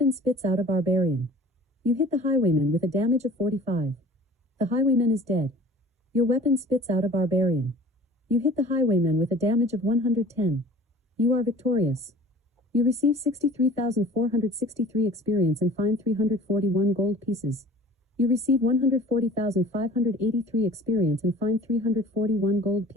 spits out a barbarian. You hit the highwayman with a damage of 45. The highwayman is dead. Your weapon spits out a barbarian. You hit the highwayman with a damage of 110. You are victorious. You receive 63,463 experience and find 341 gold pieces. You receive 140,583 experience and find 341 gold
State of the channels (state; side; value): normal; both; correlation 0.47